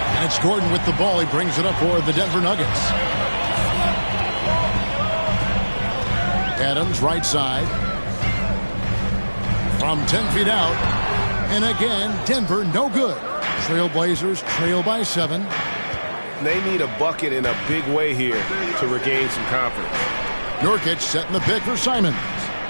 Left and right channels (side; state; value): both; inverted; correlation -1.00